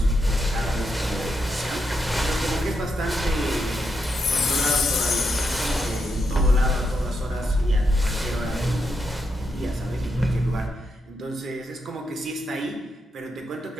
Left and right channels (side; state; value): both; normal; correlation 0.82